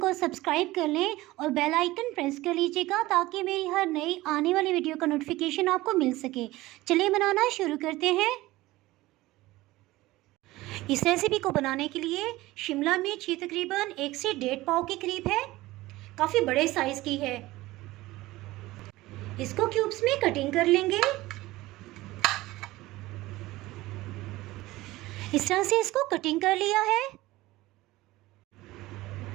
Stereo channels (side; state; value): left; quieter; 18.4 dB